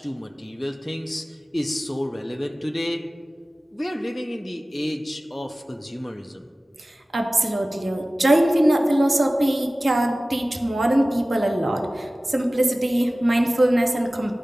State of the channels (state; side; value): normal; both; correlation 0.97